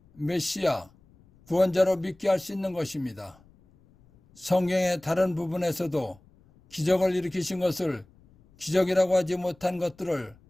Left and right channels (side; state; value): left; noise; rumble, 29 dB below the sound